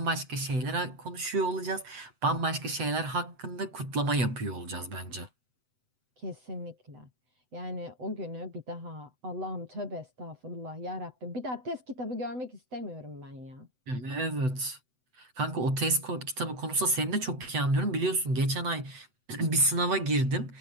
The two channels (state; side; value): late; left; 7.9 ms